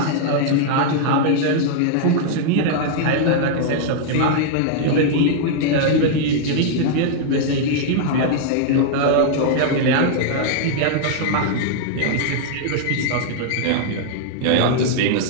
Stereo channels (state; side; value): different; both; correlation -0.01